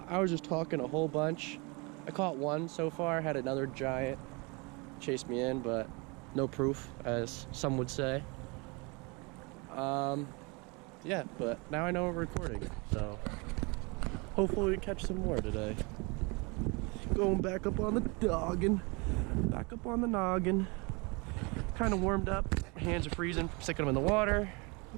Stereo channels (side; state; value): left; quieter; 29.1 dB